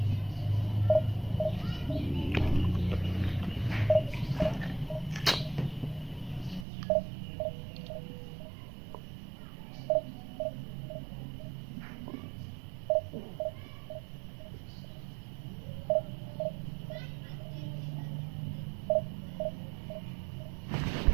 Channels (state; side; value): drops out; left; at 6.7 s